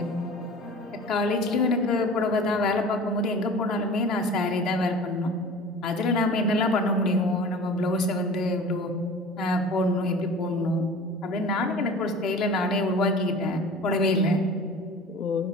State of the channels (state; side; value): normal; both; correlation 0.41